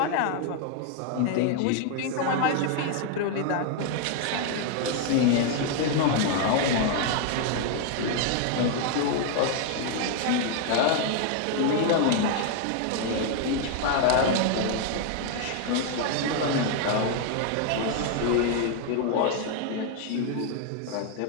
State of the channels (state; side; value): different; both; correlation 0.00